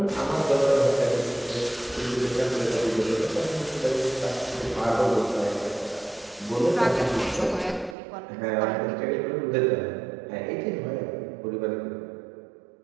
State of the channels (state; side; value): drops out; left; at 8.0 s